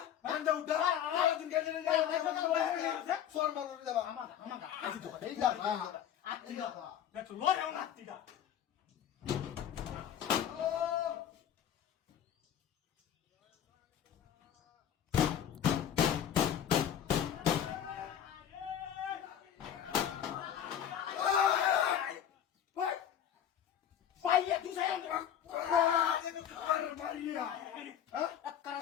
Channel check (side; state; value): right; quieter; 9.7 dB